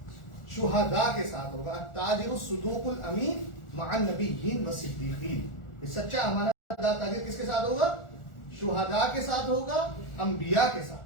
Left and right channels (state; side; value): late; right; 1.4 ms